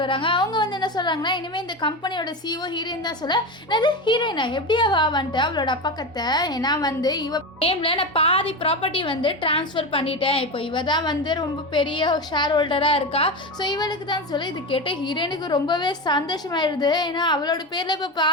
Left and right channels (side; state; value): both; normal; correlation 0.20